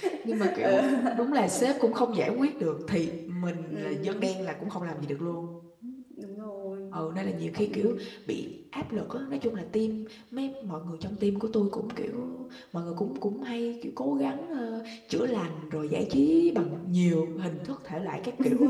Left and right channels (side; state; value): both; identical; correlation 1.00